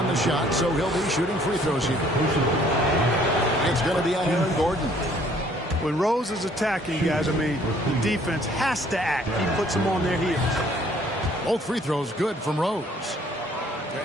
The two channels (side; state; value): both; normal; correlation 0.60